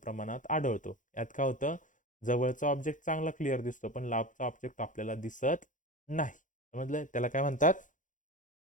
आढळतो. यात काय होतं जवळचा ऑब्जेक्ट चांगला क्लिअर दिसतो पण लांबचा ऑब्जेक्ट आपल्याला दिसत नाही. समजलं. त्याला काय म्हणतात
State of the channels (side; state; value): right; late; 0.37 ms